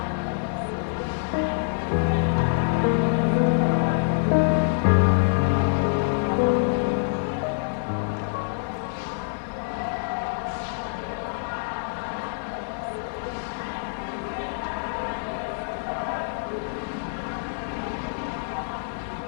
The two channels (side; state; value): right; silent; digital silence